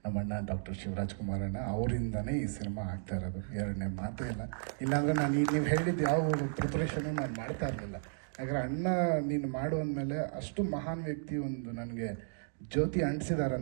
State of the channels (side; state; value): left; silent; digital silence